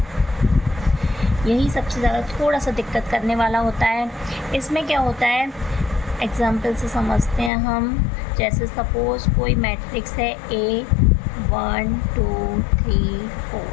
यही सबसे ज़्यादा थोड़ा सा दिक्कत करने वाला होता है। इसमें क्या होता है, एग्जाम्पल से समझते हैं हम। जैसे सपोज कोई मैट्रिक्स है A 1 2 3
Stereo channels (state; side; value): drops out; right; at 7.5 s